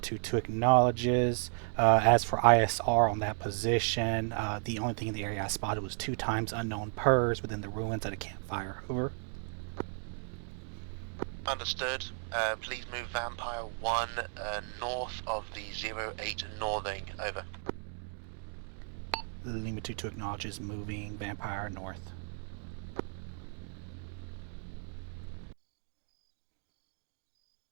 acknowledges. As for ISR on that position, the only thing in the area I spotted was 2 times unknown PERS within the ruins at a campfire, over. Understood. Please move Vampire 1 north of the 08 northing. Over. Lima 2-2 acknowledges moving Vampire north.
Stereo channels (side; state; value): left; silent; 55 dB below the other